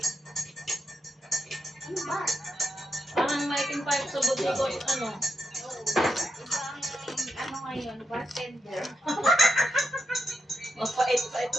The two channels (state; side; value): normal; both; correlation 0.84